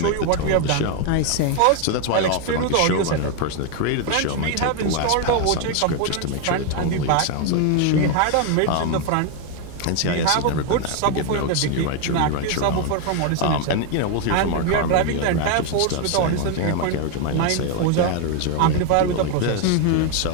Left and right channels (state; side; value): different; both; correlation 0.01